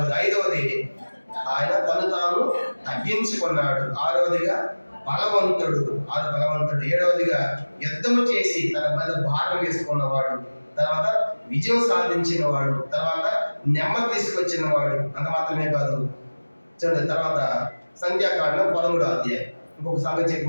ఐదవది ఆయన తను తాను తగ్గించుకున్నాడు. ఆరవదిగా బలవంతుడు. ఏడవదిగా యుద్ధము చేసి తన మీద భారం వేసుకున్నవాడు. తర్వాత విజయం సాధించిన వాడు. తర్వాత నెమ్మది తీసుకొచ్చిన వాడు. అంత మాత్రమే కాదు, చూడండి తర్వాత సంఖ్యాకాండం 13వ అధ్యాయం. ఇంకొక సంగతి చెప్పి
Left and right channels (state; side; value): inverted; both; correlation -1.00